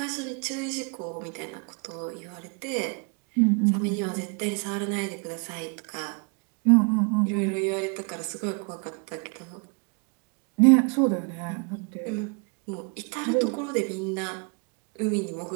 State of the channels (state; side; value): quieter; left; 36.1 dB